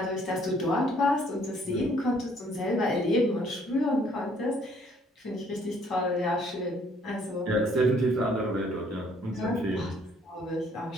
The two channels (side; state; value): both; normal; correlation 0.63